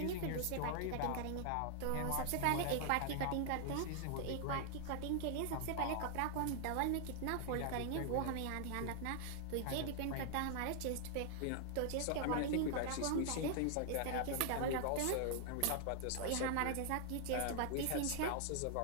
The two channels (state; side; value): different; both; correlation 0.00